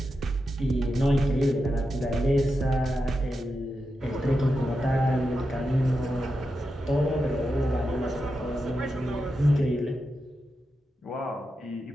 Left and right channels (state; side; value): normal; both; correlation 0.88